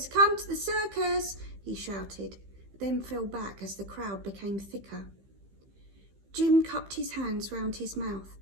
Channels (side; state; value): left; late; 15 ms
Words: come to the circus, he shouted, then fell back as the crowd became thicker. Jim cupped his hands round his mouth.